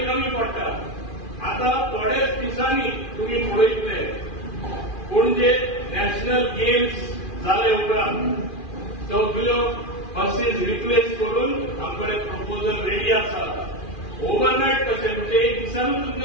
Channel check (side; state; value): right; late; 2.4 ms